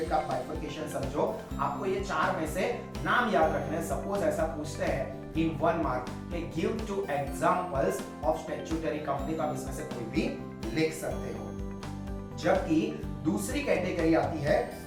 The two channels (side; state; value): both; identical; correlation 1.00